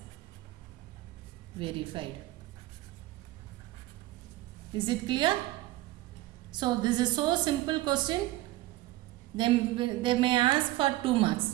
verified. Is it clear? So this is so simple question. They may ask for 2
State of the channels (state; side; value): quieter; left; 17.4 dB